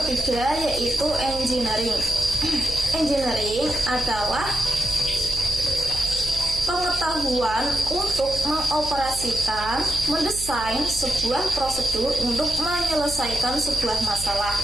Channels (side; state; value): right; noise; hum, 11 dB below the sound